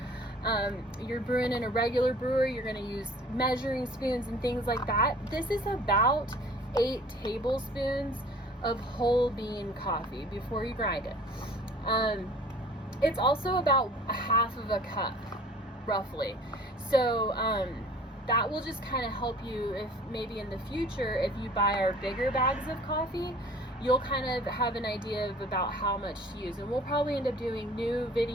you're brewing in a regular brewer, you're going to use measuring spoons and things like that. This is about 8 tablespoons of whole bean coffee before you grind it. It's also about a half of a cup, roughly. So that will just kind of help you if maybe in the future, if you buy our bigger bags of coffee, you'll kind of have an idea of about how much to use. And we'll probably end up doing new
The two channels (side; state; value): both; normal; correlation 0.49